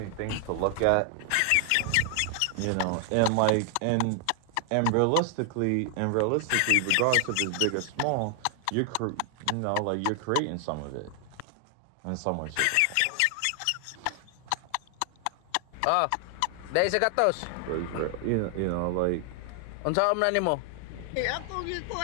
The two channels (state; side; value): different; both; correlation 0.00